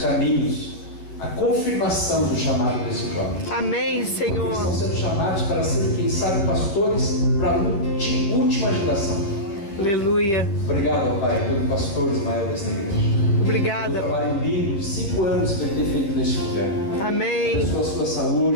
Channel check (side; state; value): right; late; 10 ms